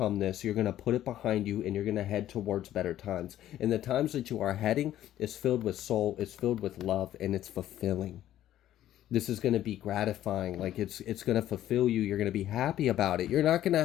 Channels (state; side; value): quieter; right; 12.6 dB